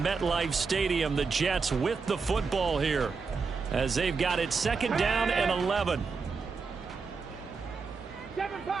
MetLife Stadium. The Jets with the football here as they've got it 2nd down and 11. Seven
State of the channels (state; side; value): quieter; left; 4.9 dB